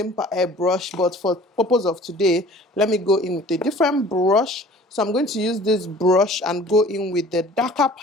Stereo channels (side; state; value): both; normal; correlation 0.48